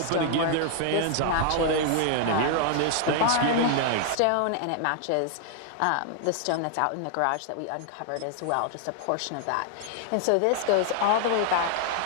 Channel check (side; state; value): both; different; correlation 0.00